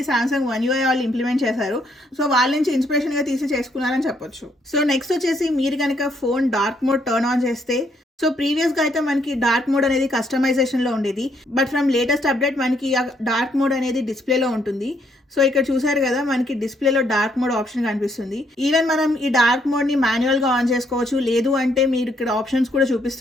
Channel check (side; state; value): both; normal; correlation 0.71